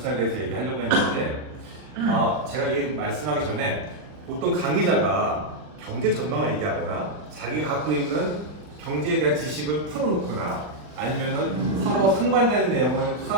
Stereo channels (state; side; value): late; left; 40 ms